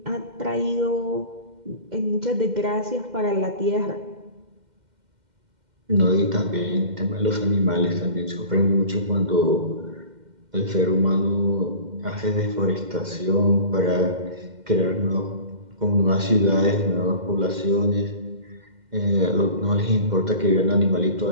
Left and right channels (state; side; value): late; left; 2.1 ms